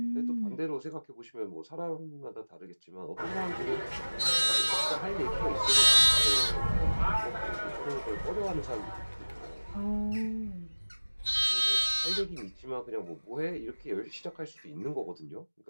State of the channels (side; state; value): both; inverted; correlation -1.00